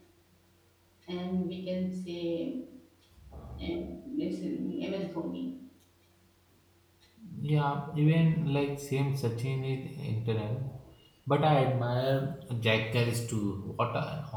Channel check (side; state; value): both; identical; correlation 1.00